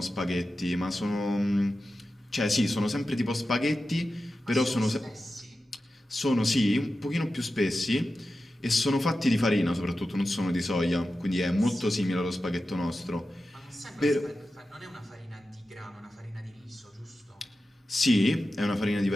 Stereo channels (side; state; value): both; normal; correlation 0.92